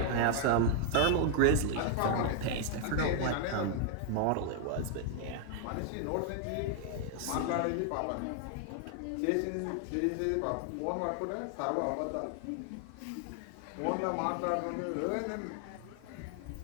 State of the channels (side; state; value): both; different; correlation 0.00